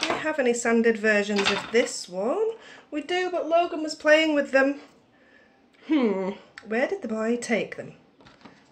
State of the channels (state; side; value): identical; both; correlation 1.00